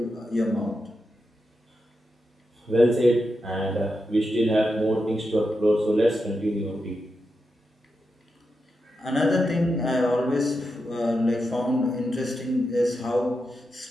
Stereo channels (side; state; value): both; normal; correlation 0.87